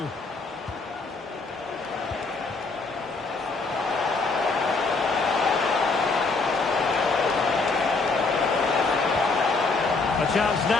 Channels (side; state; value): right; quieter; 3.9 dB